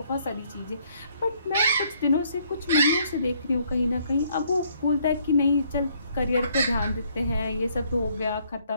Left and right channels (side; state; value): both; inverted; correlation -0.66